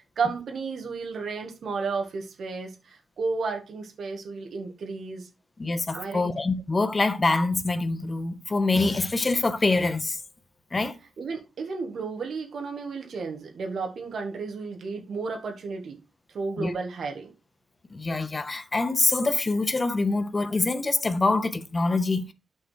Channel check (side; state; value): both; normal; correlation 0.91